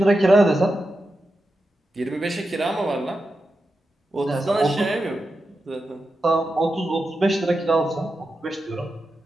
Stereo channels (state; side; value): normal; both; correlation 0.89